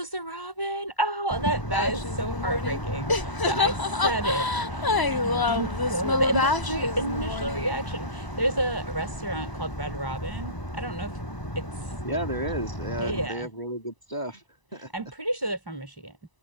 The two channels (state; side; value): late; right; 1.0 ms